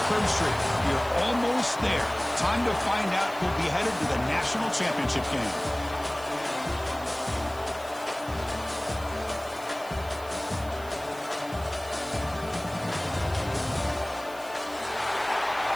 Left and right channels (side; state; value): right; noise; hiss, 19 dB below the sound